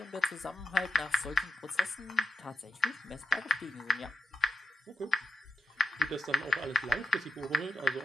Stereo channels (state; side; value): normal; both; correlation 0.85